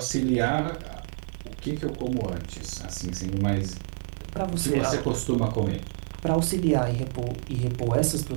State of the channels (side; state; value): left; silent; digital silence